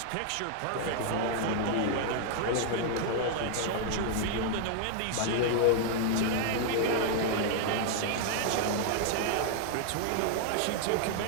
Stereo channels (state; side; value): different; both; correlation 0.00